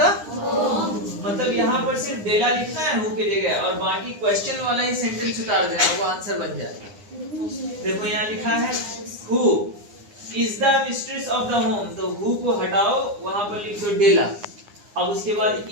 मतलब यहाँ पर सिर्फ डेला लिखना है हु की जगह, और बाकी क्वेश्चन वाला ही सेंटेंस उतार देना, वो आंसर बन जाए। देखो यहाँ लिखा है who is the mistress of the home, तो हु को हटाओ, वहां पर लिख दो डेला। अब उसके बाद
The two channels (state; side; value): late; left; 9.8 ms